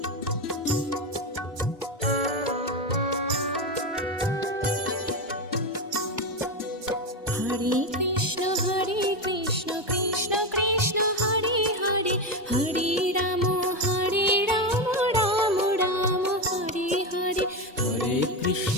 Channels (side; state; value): both; normal; correlation 0.13